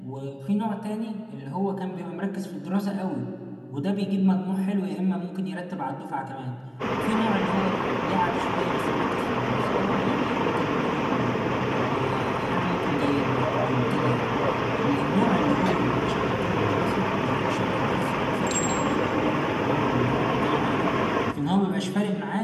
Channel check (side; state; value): both; identical; correlation 1.00